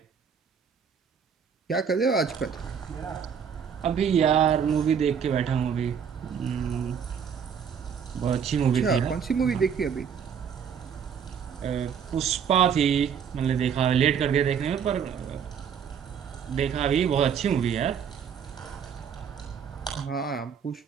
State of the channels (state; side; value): quieter; left; 7.4 dB